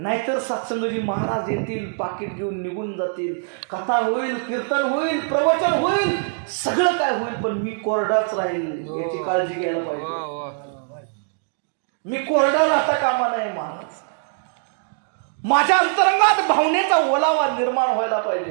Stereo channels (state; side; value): silent; left; 64 dB below the other